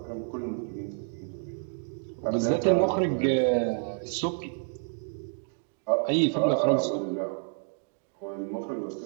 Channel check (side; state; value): left; silent; 58 dB below the other